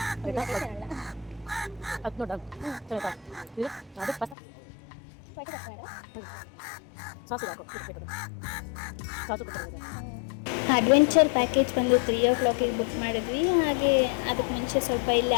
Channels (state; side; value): drops out; right; at 4.4 s